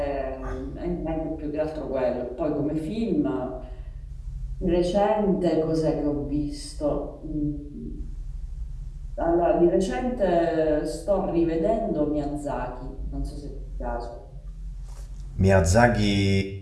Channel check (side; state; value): both; identical; correlation 1.00